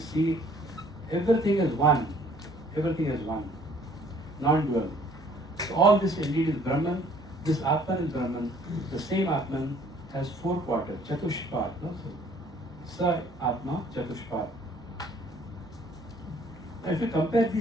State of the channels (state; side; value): normal; both; correlation 0.58